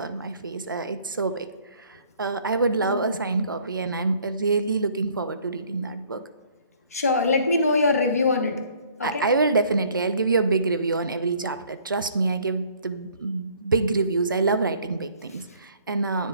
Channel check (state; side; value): inverted; both; correlation -0.59